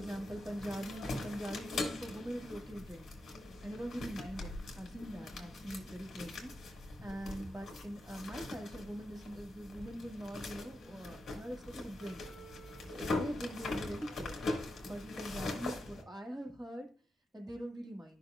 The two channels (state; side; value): normal; both; correlation 0.87